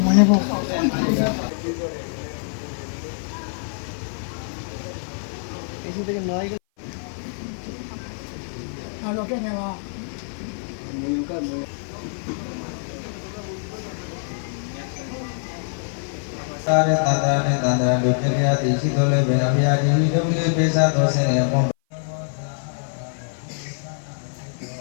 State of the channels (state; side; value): silent; right; 57 dB below the other